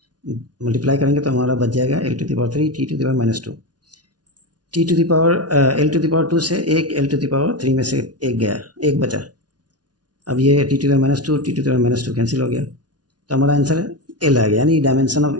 मल्टीप्लाई करेंगे तो हमारा बच जाएगा L to the power 3 T to the power -2। T to the power L to the power 2 से एक L टू द पावर 3 में से एक गया, एक बचा। अब ये T to the power -2 T to the power -2 cancel हो गया, तो हमारा आंसर L आ गया, यानी डायमेंशन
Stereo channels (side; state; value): left; late; 0.69 ms